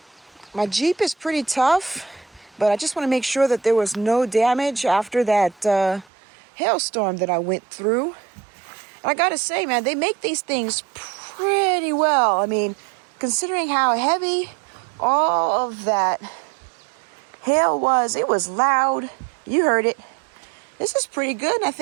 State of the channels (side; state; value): left; drops out; at 6.1 s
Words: My Jeep is pretty tough, but I just want to make sure that there was no damage after that hailstorm that I went through. And I gotta say, man, they make these things pretty well. I mean, considering how heavy all of that hail was, it was loud. You heard it. This is pretty good, and I